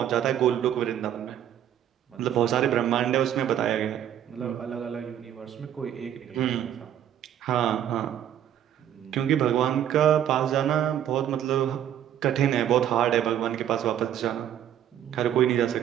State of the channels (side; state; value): left; quieter; 10.5 dB